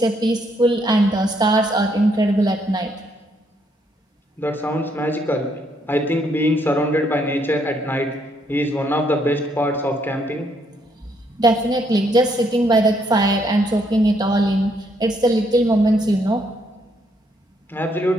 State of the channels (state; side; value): normal; both; correlation 0.72